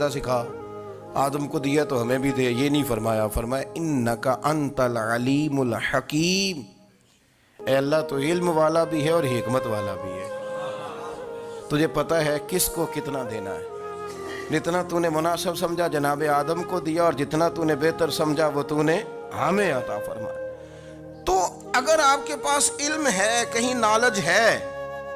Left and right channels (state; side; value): identical; both; correlation 1.00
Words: سکھا، آدم کو دیا تو ہمیں بھی دے، یہ نہیں فرمایا، فرمایا انکا انت العلیم الحکیم، اے اللہ تو علم والا بھی ہے اور حکمت والا بھی ہے، تجھے پتہ ہے کس کو کتنا دینا ہے، جتنا تو نے مناسب سمجھا جناب آدم کو دیا، اور جتنا تو نے بہتر سمجھا وہ تو نے ہمیں عطا فرمایا۔ تو اگر آپ کے پاس علم ہے، کہیں نالج ہے،